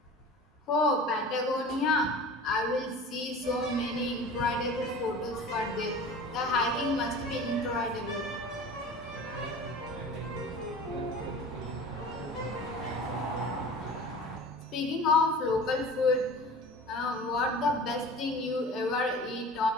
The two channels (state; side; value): normal; both; correlation 0.39